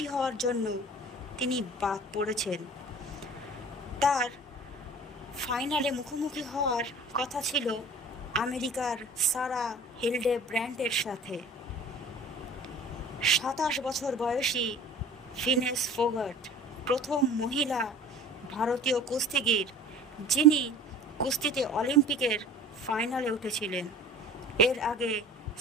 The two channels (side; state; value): both; normal; correlation 0.43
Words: হওয়ার জন্য তিনি বাদ পড়েছেন। তার ফাইনালে মুখোমুখি হওয়ার কথা ছিল আমেরিকার সারা হিলডেব্র্যান্ডের সাথে। 27 বছর বয়সী ভিনেস ফোগাট প্রথম মহিলা ভারতীয় কুস্তিগির যিনি কুস্তিতে অলিম্পিকের ফাইনালে উঠেছিলেন। এর আগে